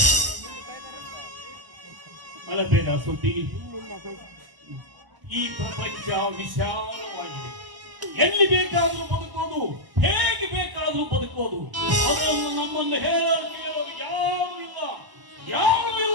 ಅಳಬೇಡ ಸುದ್ದಿ, ಈ ಪ್ರಪಂಚ ವಿಶಾಲವಾಗಿದೆ. ಎಲ್ಲಿ ಬೇಕಾದ್ರೂ ಬದುಕೋದು, ಹೇಗೆ ಬೇಕಾದ್ರೂ ಬದುಕೋದು. ಅದನ್ನು ನಮ್ಮನ್ನು ಹೇಳೋರು ಯಾರು ಇಲ್ಲ, ಯಾರು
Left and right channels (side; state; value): left; late; 1.0 ms